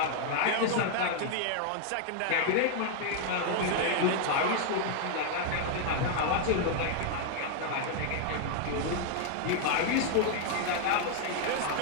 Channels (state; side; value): different; both; correlation 0.00